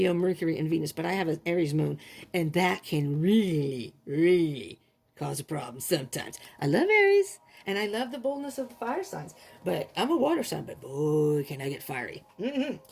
Mercury, and Venus, but I have an Aries moon, and that can really, really cause a problem sometimes. I love Aries, and I love the boldness of the fire signs, but I'm a water sign, but boy, can I get fiery.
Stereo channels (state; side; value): identical; both; correlation 1.00